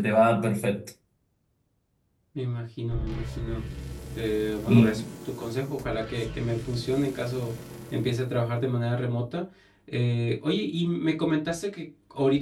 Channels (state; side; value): identical; both; correlation 1.00